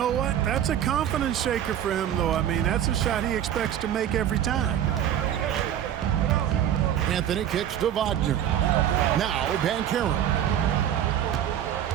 what? That's a confidence shaker for him, though. I mean, that's a shot he expects to make every time. Anthony kicks to Wagner. Now Banchero.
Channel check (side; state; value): left; quieter; 10.4 dB